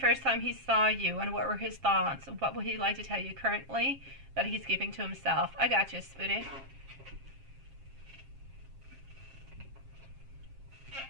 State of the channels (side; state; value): left; late; 7.4 ms